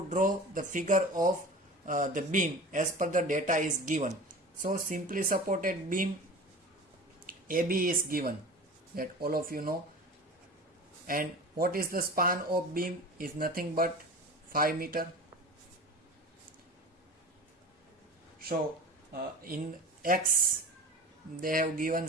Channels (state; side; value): normal; both; correlation 0.35